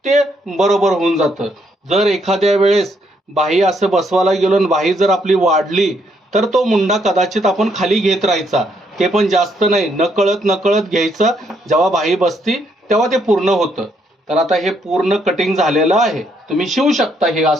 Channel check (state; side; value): normal; both; correlation 0.73